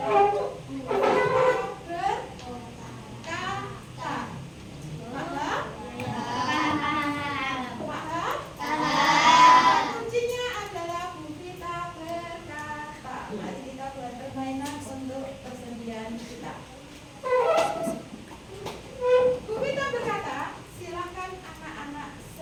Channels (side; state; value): both; identical; correlation 1.00